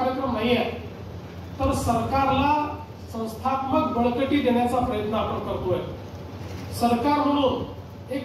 नाही आहे, तर सरकारला संस्थात्मक बळकटी देण्याचा प्रयत्न आपण करतोय. सरकार म्हणून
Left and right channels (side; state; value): both; identical; correlation 1.00